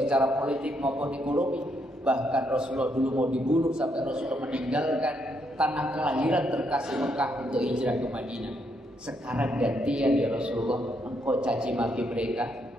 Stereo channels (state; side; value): normal; both; correlation 0.76